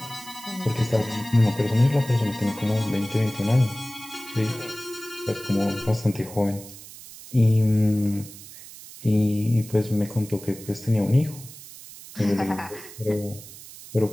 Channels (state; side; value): noise; right; hiss, 16 dB below the sound